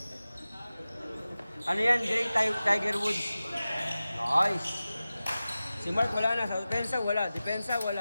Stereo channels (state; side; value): inverted; both; correlation -0.96